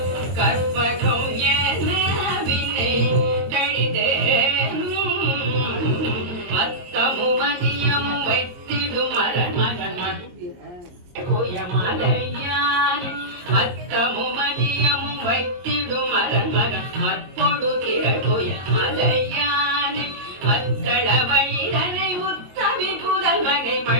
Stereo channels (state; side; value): late; left; 22 ms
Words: கற்பகம் என வினை கடிதேனும் மத்தமும் மதியம் வைத்திடும் மரமகன் மலையான் மத்தமும் மதியமும் வைத்திடும் அரண்மகன் மற்பொடு திரள் மலையான் மத்தள